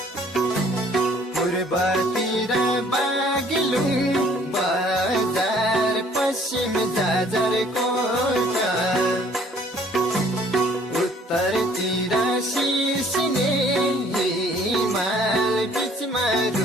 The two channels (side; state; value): both; normal; correlation 0.58